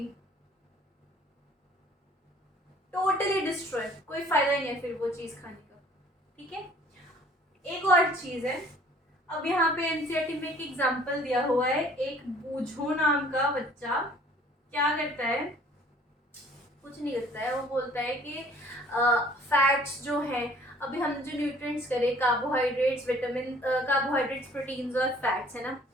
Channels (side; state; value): both; normal; correlation 0.54